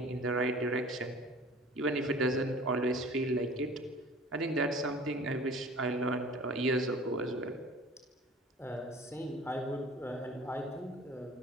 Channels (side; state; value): both; normal; correlation 0.45